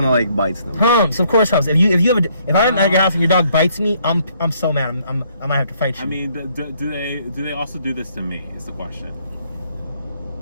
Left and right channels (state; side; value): inverted; both; correlation -0.67